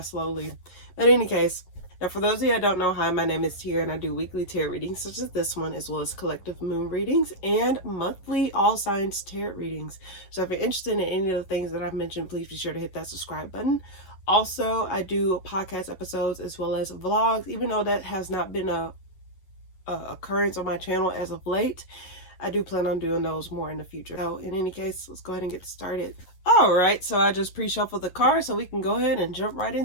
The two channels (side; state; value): right; late; 11 ms